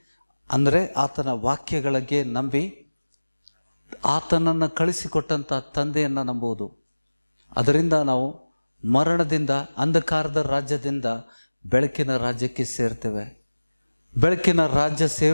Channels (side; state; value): both; inverted; correlation -1.00